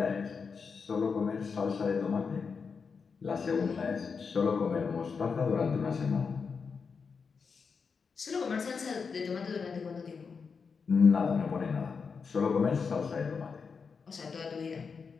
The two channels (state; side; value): quieter; right; 5.5 dB